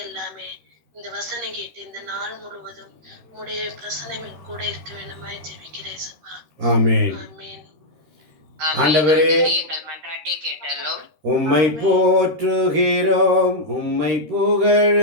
எல்லாமே. இந்த வசனம் கேட்டு இந்த நாள் முழுவதும் உங்களுடைய பிரசனம் கூட இருக்க வேண்டுமாய் ஜெபிக்கிறேன் ஏசப்பா. ஆமென். ஆமென். ஆண்டவரே, எங்கள் மன்றாட்டை கேட்டலும். உம்மை போற்றுகிறோம், உம்மை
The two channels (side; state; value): left; late; 13 ms